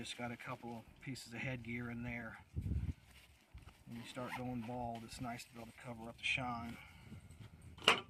got a couple of pieces of headgear in there. When you start going bald, it's nice to be able to cover up the shine.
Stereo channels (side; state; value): both; identical; correlation 1.00